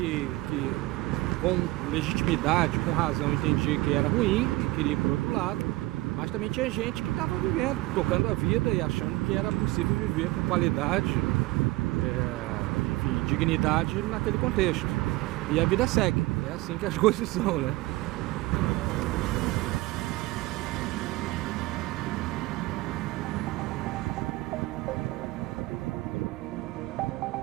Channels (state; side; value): quieter; left; 20.0 dB